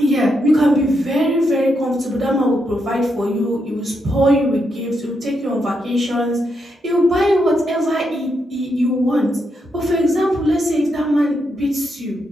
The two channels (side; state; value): both; normal; correlation 0.81